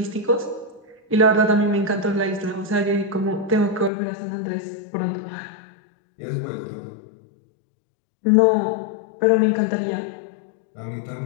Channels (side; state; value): right; drops out; at 3.9 s